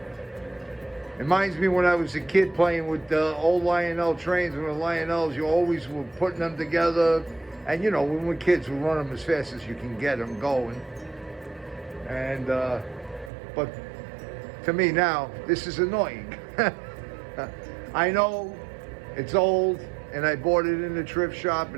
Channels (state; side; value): drops out; left; at 13.3 s